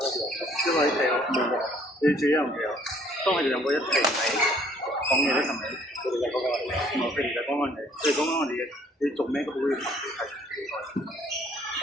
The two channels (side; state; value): both; normal; correlation 0.60